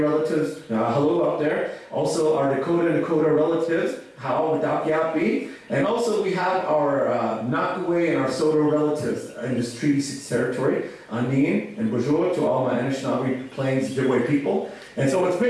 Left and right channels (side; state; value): both; identical; correlation 1.00